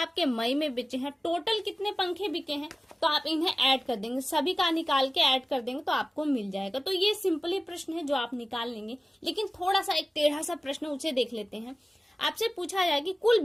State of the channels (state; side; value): normal; both; correlation 0.97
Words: मई में बिके हैं। टोटल कितने पंखे बिके हैं, तो आप इन्हें ऐड कर देंगे, सभी का निकाल के ऐड कर देंगे तो आपको मिल जाएगा। तो ये सिंपली प्रश्न है जो आप निकाल लेंगे। लेकिन थोड़ा सा एक टेढ़ा सा प्रश्न, उसे देख लेते हैं। आपसे पूछा जाए कि कुल